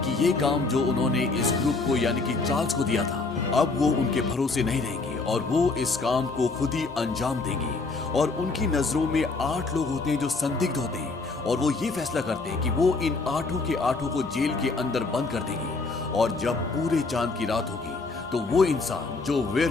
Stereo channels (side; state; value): right; quieter; 3.8 dB